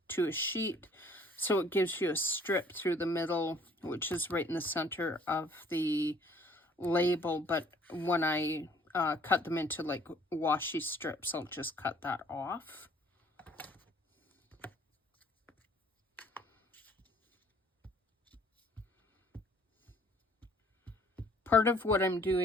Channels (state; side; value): normal; both; correlation 0.57